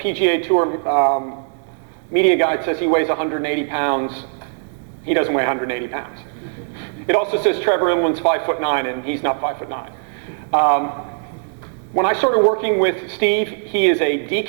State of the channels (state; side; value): silent; left; digital silence